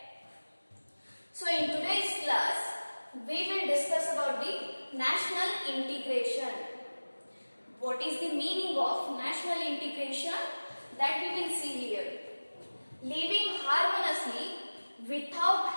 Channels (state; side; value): inverted; both; correlation -1.00